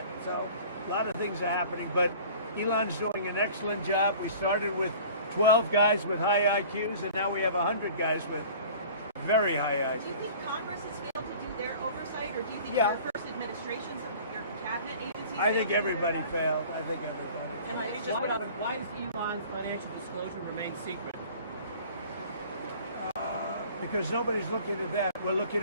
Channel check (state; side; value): inverted; both; correlation -0.45